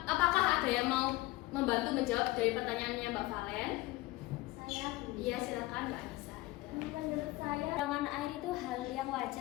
apakah ada yang mau membantu menjawab dari pertanyaannya Mbak Valen? Saya Bu. Iya, silakan Mbak Anissa. Menurut saya kekurangan air itu hal yang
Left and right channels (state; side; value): quieter; right; 19.0 dB